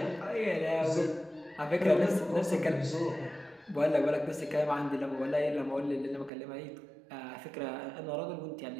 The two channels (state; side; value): drops out; left; at 6.3 s